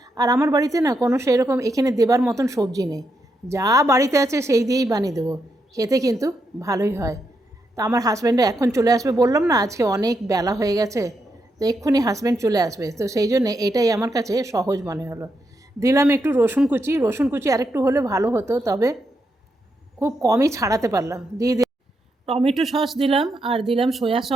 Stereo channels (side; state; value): both; normal; correlation 0.82